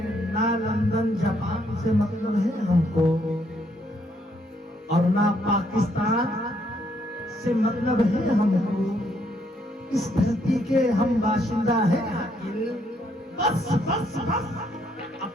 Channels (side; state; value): both; normal; correlation 0.71